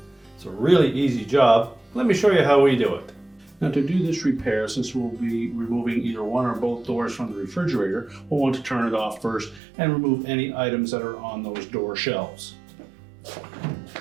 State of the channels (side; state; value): left; drops out; at 9.6 s